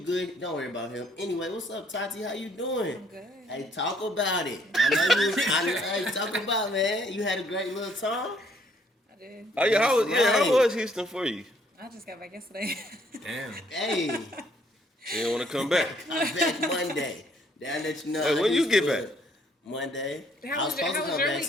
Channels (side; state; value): both; normal; correlation 0.65